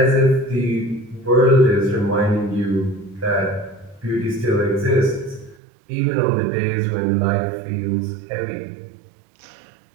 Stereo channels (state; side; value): drops out; left; at 5.6 s